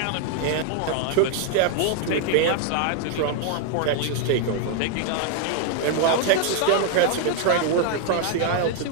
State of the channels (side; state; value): both; different; correlation 0.00